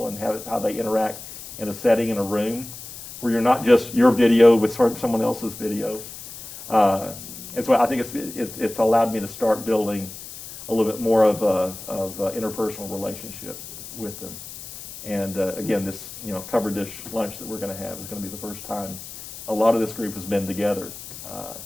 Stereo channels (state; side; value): noise; left; hiss, 13 dB below the sound